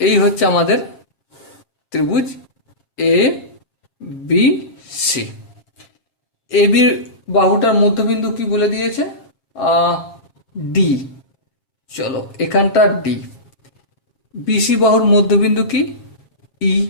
এই হচ্ছে আমাদের ত্রিভুজ এ বি সি। এ বির বাহুটার মধ্যবিন্দু কি বলে দিয়েছে? ডি। চলো এখানটা ডি। বিসি বাহুর মধ্যবিন্দু কি? ই।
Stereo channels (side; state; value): right; late; 7.4 ms